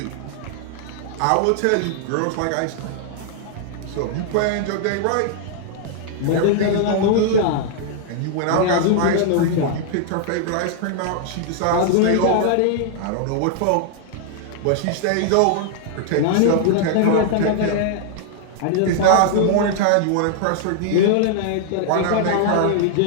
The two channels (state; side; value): different; both; correlation -0.01